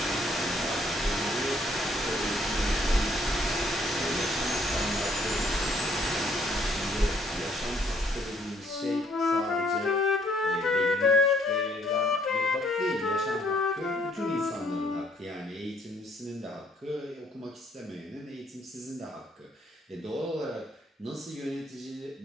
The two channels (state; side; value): normal; both; correlation 0.66